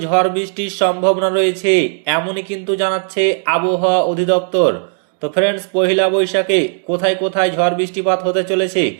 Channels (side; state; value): left; silent; 69 dB below the other